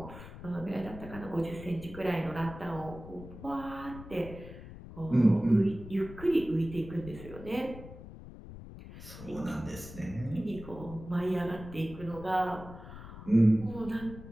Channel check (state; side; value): noise; left; rumble, 14 dB below the sound